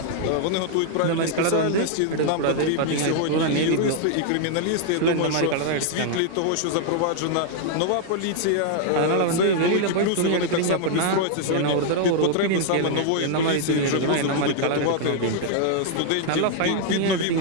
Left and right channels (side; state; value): both; different; correlation 0.00